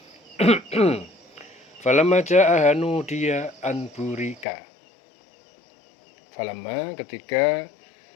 Falamma ja'aha nudiya an burika. Falamma, ketika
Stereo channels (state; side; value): drops out; right; at 4.5 s